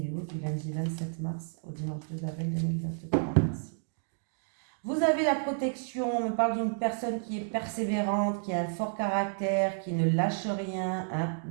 du lundi 27 mars au dimanche 2 avril 2023. Merci. Vous avez la protection, on me parle d'une personne qui est persévérante, qui a un fort caractère, qui ne lâche rien, hein,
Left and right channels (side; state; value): left; silent; digital silence